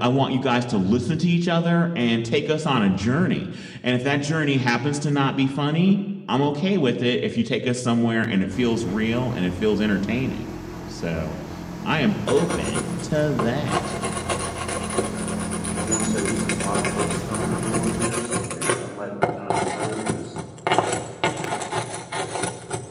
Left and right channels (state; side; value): identical; both; correlation 1.00